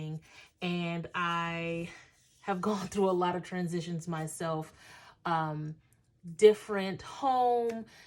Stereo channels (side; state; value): both; identical; correlation 1.00